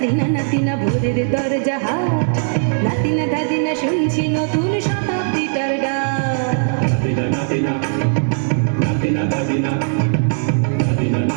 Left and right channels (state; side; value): silent; left; 66 dB below the other